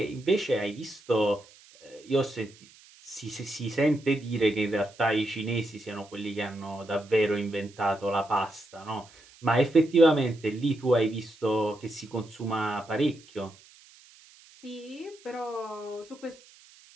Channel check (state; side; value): noise; right; hiss, 25 dB below the sound